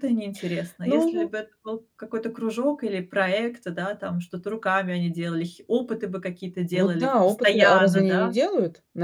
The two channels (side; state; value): both; identical; correlation 1.00